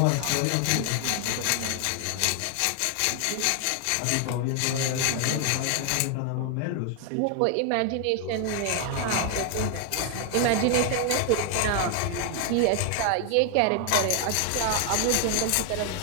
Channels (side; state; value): both; different; correlation 0.00